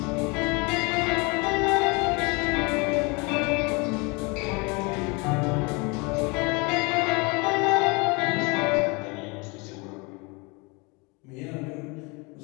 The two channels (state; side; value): quieter; right; 28.7 dB